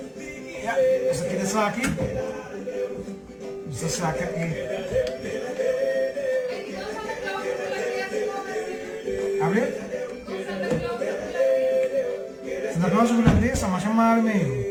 Ya, bisa kita sakit. Bisa sakit ini. Abre? Santa Claus bulan sama-sama meio.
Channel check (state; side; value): identical; both; correlation 1.00